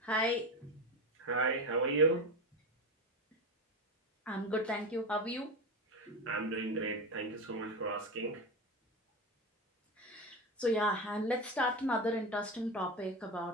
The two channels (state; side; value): normal; both; correlation 0.20